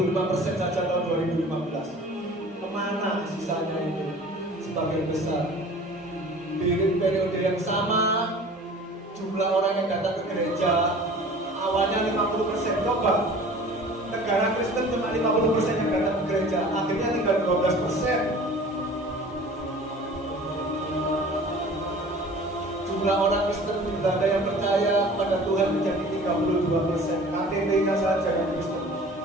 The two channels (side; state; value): both; normal; correlation 0.44